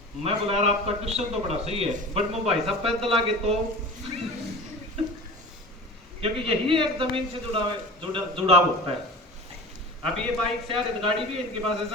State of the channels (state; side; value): normal; both; correlation 0.36